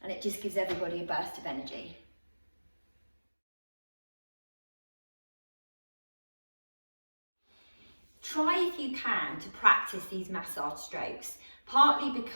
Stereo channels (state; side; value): inverted; both; correlation -1.00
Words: and it just gives everybody a burst of energy. Try if you can to practice these massage strokes, partly